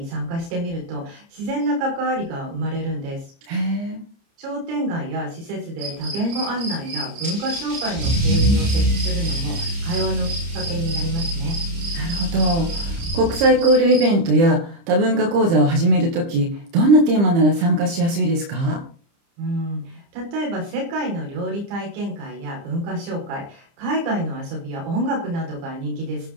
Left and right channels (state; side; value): late; left; 30 ms